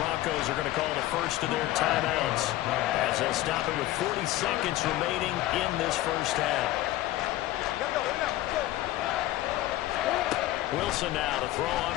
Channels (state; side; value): quieter; right; 15.6 dB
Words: Broncos are going to call the first of their timeouts as they'll stop it with 40 seconds remaining in this first half. Wilson now to throw on